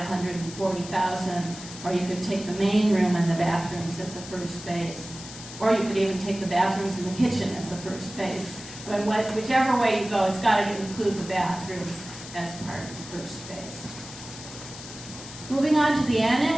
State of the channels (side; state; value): left; noise; hiss, 13 dB below the sound